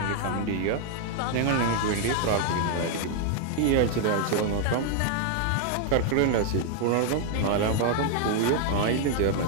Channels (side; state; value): both; different; correlation 0.00